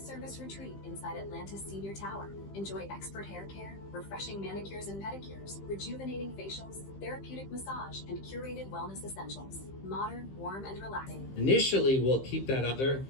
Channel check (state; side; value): late; right; 15 ms